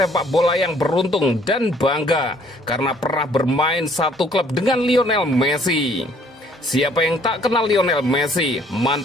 bola yang beruntung dan bangga karena pernah bermain satu klub dengan Lionel Messi. Siapa yang tak kenal Lionel Messi,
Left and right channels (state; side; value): normal; both; correlation 0.60